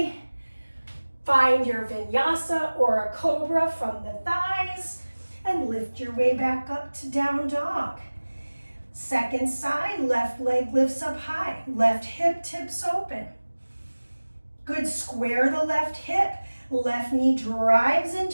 Find your vinyasa or a cobra from the thighs and lift your way back up to down dog. Second side, left leg lifts up high, left hip tips open. Good, square the left hip, left knee drives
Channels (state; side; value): inverted; both; correlation -1.00